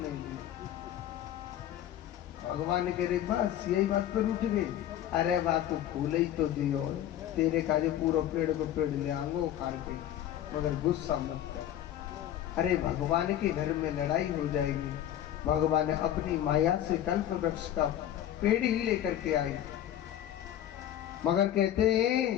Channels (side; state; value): right; quieter; 11.5 dB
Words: दिया? भगवान कह रहे बस यही बात पर उठ गई। अरे बात तो फूल ही तो दियो, तेरे काजे पूरा पेड़ को पेड़ ले आंगो उखाड़ के, मगर गुस्सा मत कर। अरे भगवान के घर में लड़ाई हो जाएगी। भगवान अपनी माया से कल्प वृक्ष का पेड़ ही लेकर के आए, मगर कहते